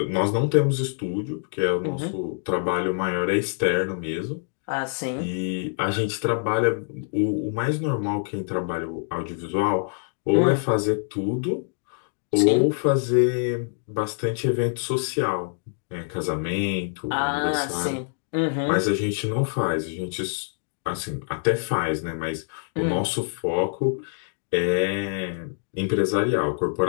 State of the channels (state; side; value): silent; right; digital silence